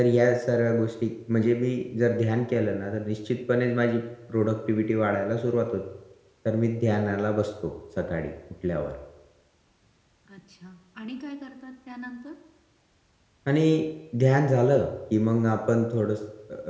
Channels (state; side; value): identical; both; correlation 1.00